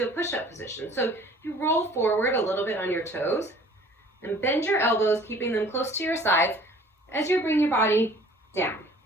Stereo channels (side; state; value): both; normal; correlation 0.51